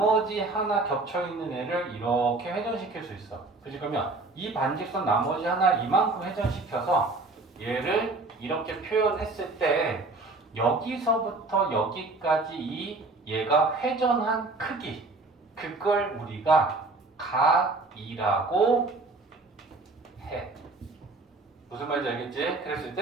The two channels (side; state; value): left; quieter; 3.3 dB